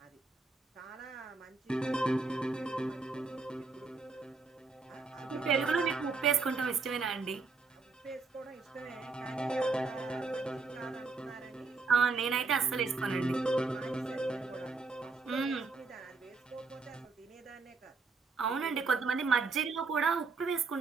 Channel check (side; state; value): left; quieter; 4.2 dB